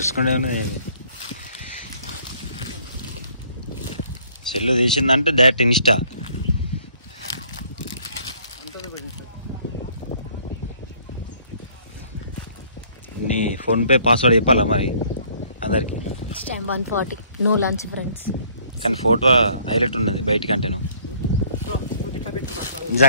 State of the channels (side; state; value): both; inverted; correlation -0.60